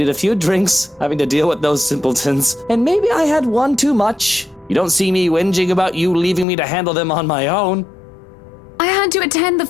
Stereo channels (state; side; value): drops out; right; at 6.5 s